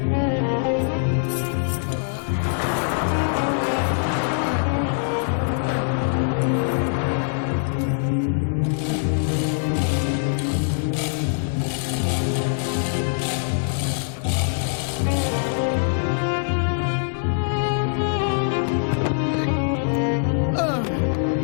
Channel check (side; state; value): right; silent; 63 dB below the other